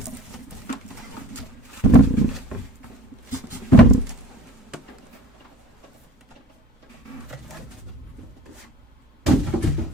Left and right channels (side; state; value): both; normal; correlation 0.46